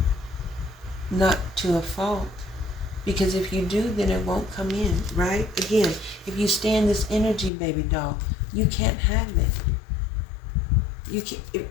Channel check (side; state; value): right; drops out; at 7.5 s